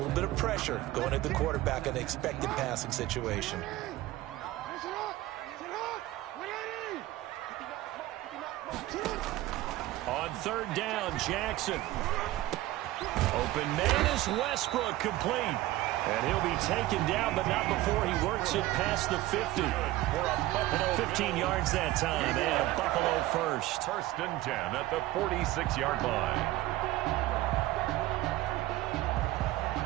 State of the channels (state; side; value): quieter; left; 16.6 dB